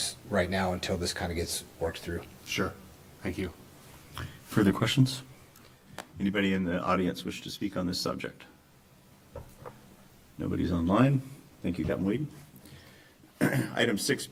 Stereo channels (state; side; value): identical; both; correlation 1.00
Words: right now until this kind of gets worked through. Sure. Thank you. Further questions? Anybody in the audience wish to speak on this subject? Nobody's online. Thank you, Captain Weed. Item